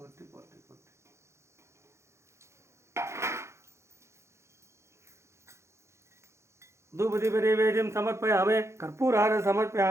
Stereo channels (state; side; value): late; left; 0.13 ms